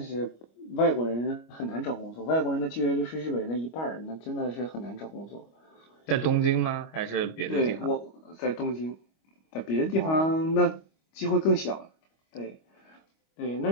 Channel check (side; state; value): right; late; 25 ms